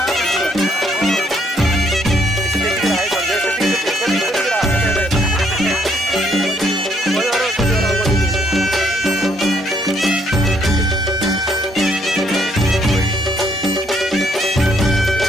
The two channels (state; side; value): normal; both; correlation 0.69